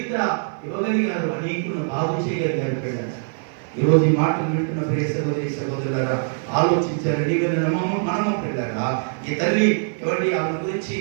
ఇవ్వగలిగారు, అనేకులను బాగు చేయగలిగారు. పిల్లలు ఈరోజు ఈ మాటలు వింటున్న ప్రియ సహోదరి సహోదరులారా ఆలోచించారు. మనము పిల్లరా ఈ తల్లి ఎవరి ఆమె గురించి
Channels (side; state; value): left; silent; 55 dB below the other